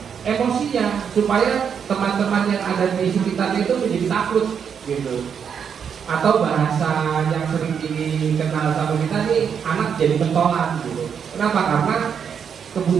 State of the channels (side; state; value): left; quieter; 7.3 dB